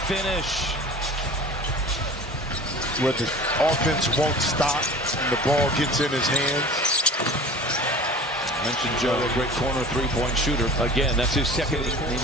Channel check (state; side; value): normal; both; correlation 0.41